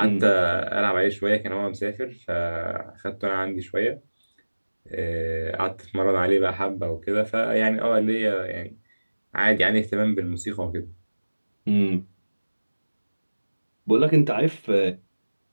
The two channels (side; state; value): both; inverted; correlation -1.00